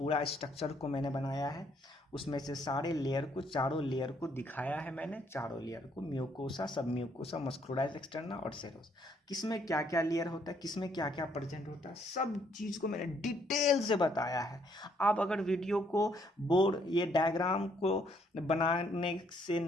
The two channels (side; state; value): both; normal; correlation 0.68